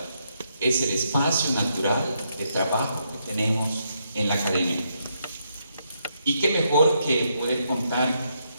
es el espacio natural de trabajo que tenemos en la academia. Y qué mejor que poder contar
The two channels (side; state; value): both; inverted; correlation -0.78